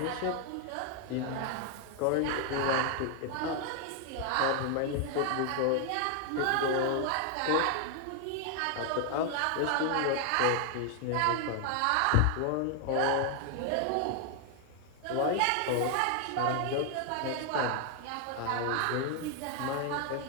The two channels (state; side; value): different; both; correlation 0.00